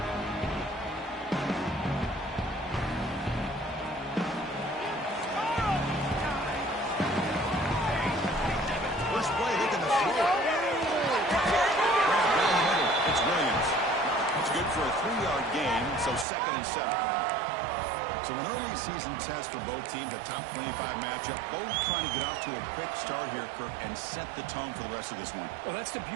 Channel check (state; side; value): drops out; left; at 16.2 s